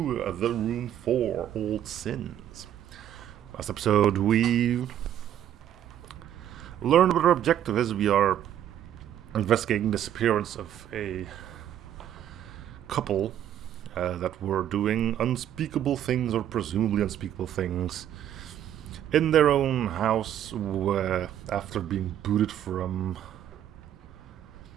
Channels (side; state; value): left; quieter; 10.8 dB